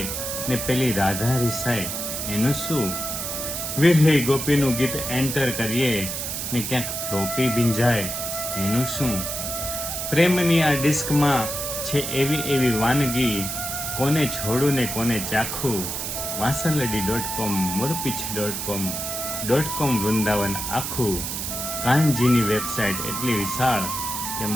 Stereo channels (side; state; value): right; noise; hiss, 4 dB below the sound